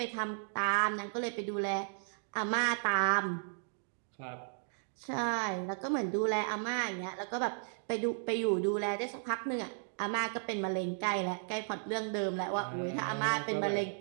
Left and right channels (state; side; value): silent; left; digital silence